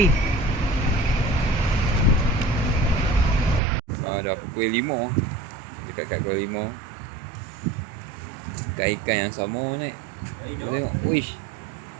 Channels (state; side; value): drops out; left; at 3.6 s